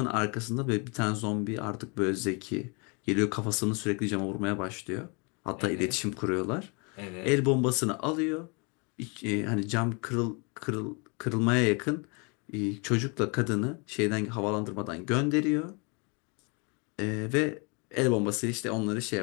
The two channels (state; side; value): quieter; right; 32.8 dB